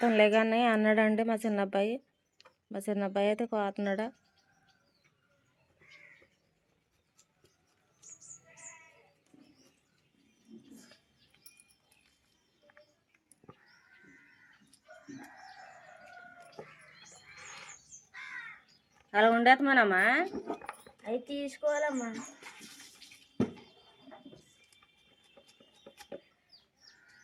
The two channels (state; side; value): identical; both; correlation 1.00